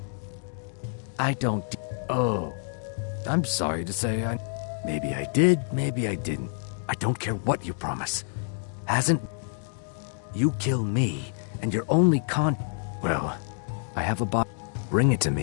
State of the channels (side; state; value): right; silent; 58 dB below the other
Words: I don't Oh. I'm sorry to say Maybe I did, maybe I didn't. I don't care what you promise. Hasn't... You kill me, and your only Well, I have a box. Bring it to